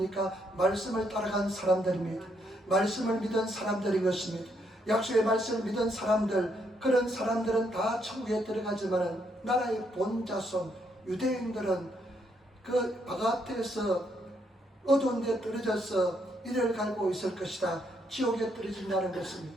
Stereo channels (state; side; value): normal; both; correlation 0.75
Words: 말씀을 따라간 사람들입니다. 말씀을 믿은 사람들인 것입니다. 약속의 말씀을 믿은 사람들, 그런 사람들은 다 천국에 들어가지만 나라의 본자손 유대인들은 그 바깥에서 어두운 데 떨어져서 이를 갈고 있을 것이다. 지옥에 떨어진다는 것입니다.